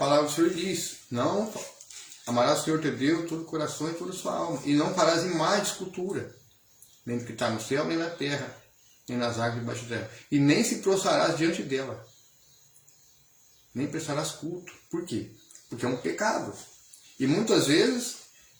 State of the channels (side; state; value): both; identical; correlation 1.00